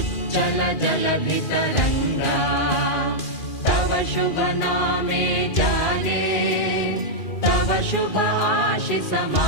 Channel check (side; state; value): right; late; 2.4 ms